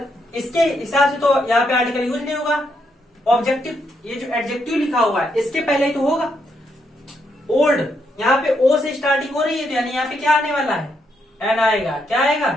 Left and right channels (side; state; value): both; normal; correlation 0.78